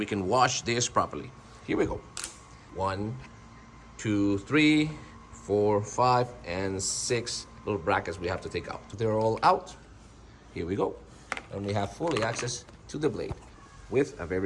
can wash this properly. Here we go. 1, 2, 3, 4, 5, and 6 little brackets we have to take out. They're all out. Here we go. And we have fully access to the blade. With a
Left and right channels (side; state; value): both; identical; correlation 1.00